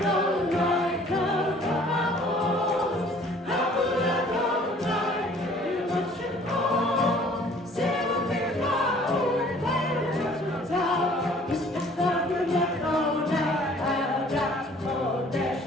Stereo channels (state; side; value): normal; both; correlation 0.54